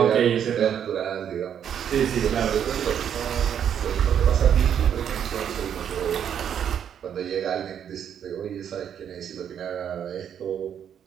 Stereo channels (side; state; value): left; quieter; 8.8 dB